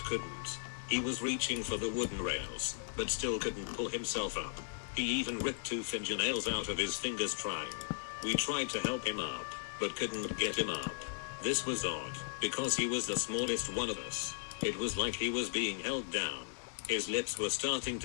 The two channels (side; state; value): right; silent; 53 dB below the other